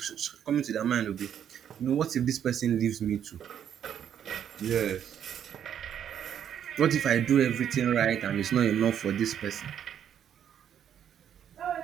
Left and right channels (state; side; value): quieter; left; 9.3 dB